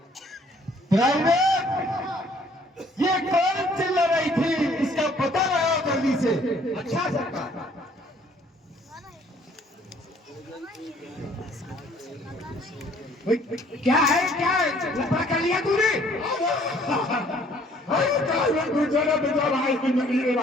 प्राइवेट ये कौन चिल्ला रही थी, इसका पता लगाओ जल्दी से। अच्छा सरकार। क्या है लफड़ा कर लिया तूने? अरे गुजरा बेटा भाई की नदी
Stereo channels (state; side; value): normal; both; correlation 0.59